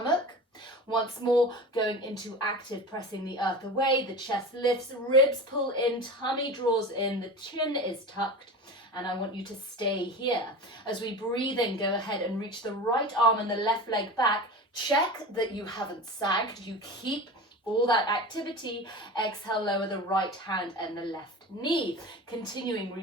Once more, going into active, pressing the earth away, the chest lifts, ribs pull in, tummy draws in, the chin is tucked. And I want you to stay here. As we breathe in, go ahead and reach the right arm and the left leg back. Check that you haven't sagged. You keep all that activity. Exhale, lower the right hand and the left knee. Continuing,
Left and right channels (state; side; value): normal; both; correlation 0.31